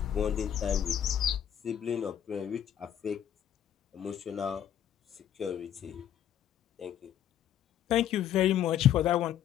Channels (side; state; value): right; quieter; 10.3 dB